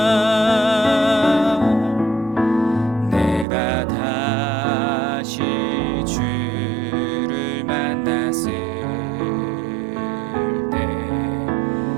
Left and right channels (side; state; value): left; drops out; at 3.5 s